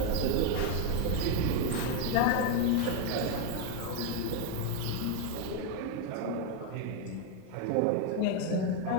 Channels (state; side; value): different; both; correlation 0.01